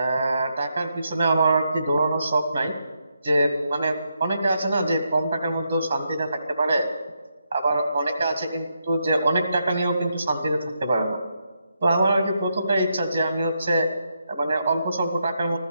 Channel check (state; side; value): inverted; both; correlation -0.81